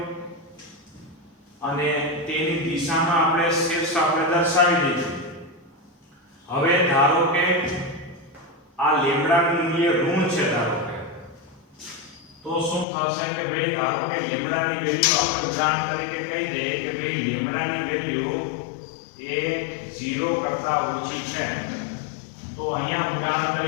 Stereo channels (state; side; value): drops out; right; at 12.9 s